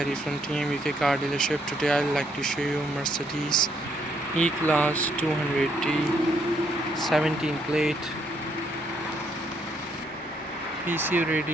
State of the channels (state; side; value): normal; both; correlation 0.72